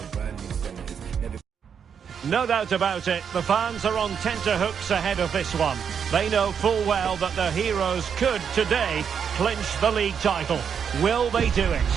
brand new senators. Never. No doubt about it, the fans are on tenterhooks ahead of this one. They know full well that their heroes could, today, clinch the league title. Will they do it?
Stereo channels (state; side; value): quieter; left; 7.3 dB